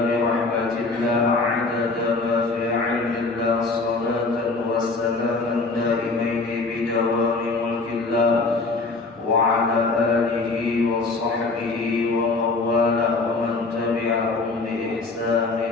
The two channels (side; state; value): right; quieter; 3.7 dB